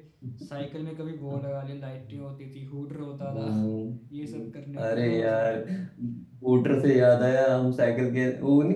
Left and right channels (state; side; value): identical; both; correlation 1.00